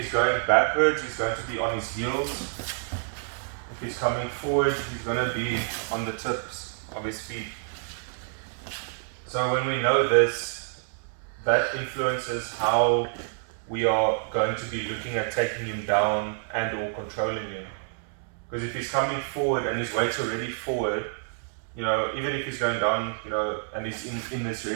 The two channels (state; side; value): silent; left; 59 dB below the other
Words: going backwards, he's going to be on his heels. If he's coming forward, he's going to be on the tips of his feet. So when we know this, that influences how we are going to be looking at taking him down and or controlling him. Because if he's coming forward and his weight's already forward, even if he's going down, and he's in this